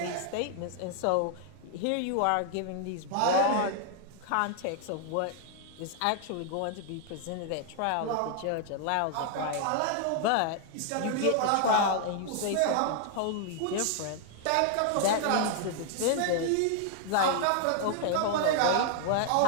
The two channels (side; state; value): both; different; correlation 0.00